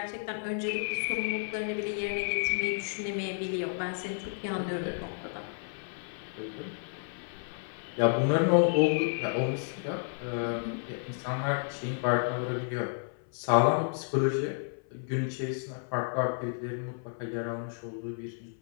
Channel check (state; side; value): silent; right; 55 dB below the other